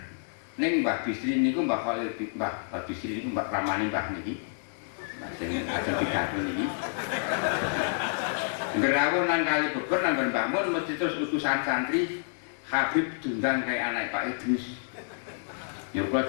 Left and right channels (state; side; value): silent; right; digital silence